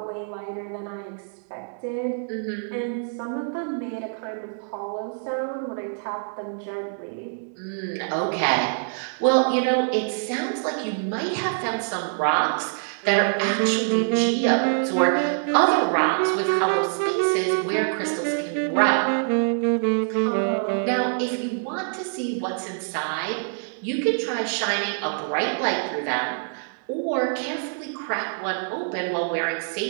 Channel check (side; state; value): left; silent; digital silence